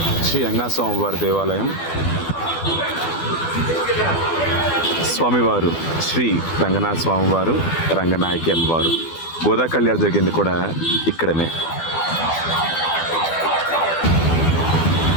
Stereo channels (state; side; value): late; right; 12 ms